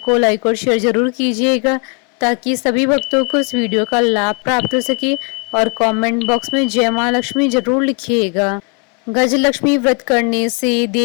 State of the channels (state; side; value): quieter; right; 34.7 dB